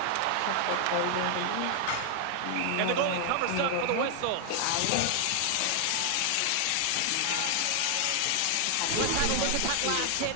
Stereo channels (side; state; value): both; different; correlation 0.00